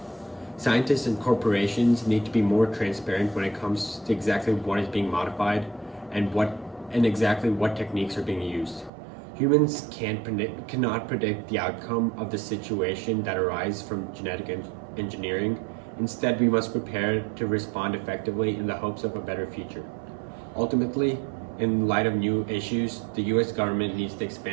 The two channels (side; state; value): left; drops out; at 8.9 s